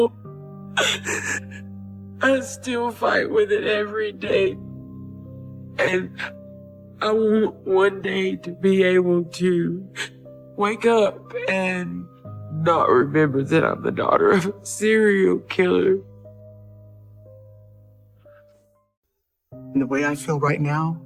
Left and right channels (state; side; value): identical; both; correlation 1.00